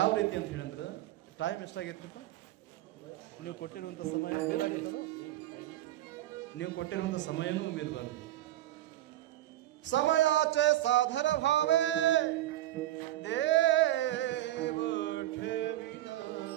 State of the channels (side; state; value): left; quieter; 14.5 dB